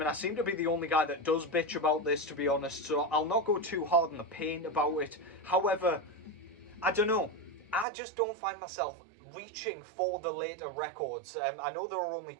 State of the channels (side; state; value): left; drops out; at 7.9 s